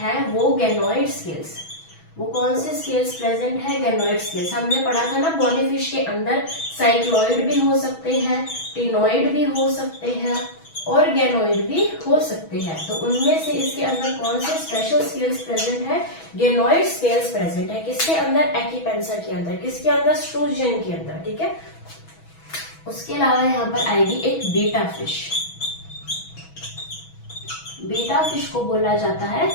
वो गैनोइड स्केल्स। वो कौन से स्केल्स प्रेजेंट है? Ganoid scales. हमने पढ़ा था ना, बोनी फिश के अंदर साइक्लॉइड भी हो सकते हैं, टिनोइड भी हो सकते हैं और गैनोइड भी हो सकते हैं। तो उनमें से इसके अंदर कौन से स्पेशल स्केल्स प्रेजेंट है? गैनोइड स्केल्स प्रेजेंट है। किसके अंदर? एक्कीपेंसर के अंदर। किसके अंदर? स्ट्रूजियन के अंदर। ठीक है। उसके अलावा यहाँ पर आएगी एक बीटा फिश। बीटा फिश को बोला जाता है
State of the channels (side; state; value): right; late; 6.2 ms